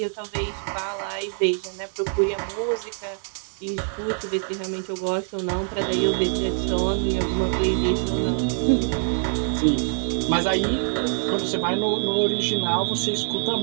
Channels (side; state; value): left; silent; 62 dB below the other